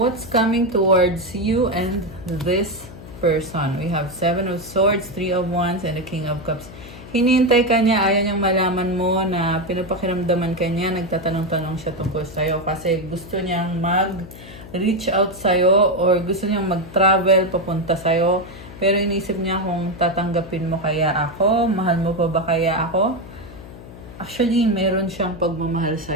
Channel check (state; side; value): noise; left; hum, 16 dB below the sound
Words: coming towards you and this person? We have 7 of Swords, 3 of Wands, and the King of Cups. Hinihintay ka niya, ayaw niyang malaman mo na pinapakiramdaman ka niya, nagtatanong-tanong siya tungkol sa'yo kasi gusto niyang mag-reach out sa'yo or gusto niyang mag-travel papunta sa'yo. Pero iniisip niya kung tatanggapin mo kaya ako, mahal mo pa ba kaya ako? Actually, meron siyang pagmamahal